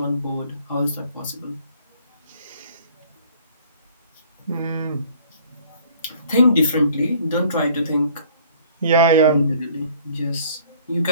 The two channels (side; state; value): both; inverted; correlation -0.56